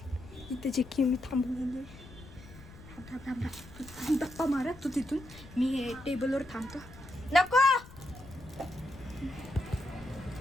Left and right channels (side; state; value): left; noise; rumble, 18 dB below the sound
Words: इथे जे की मी थांबून धप्पा मारा तू तिथून. मी हे टेबलवर थांबतो. नको